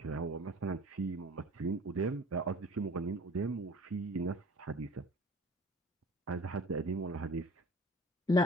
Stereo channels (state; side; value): normal; both; correlation 0.45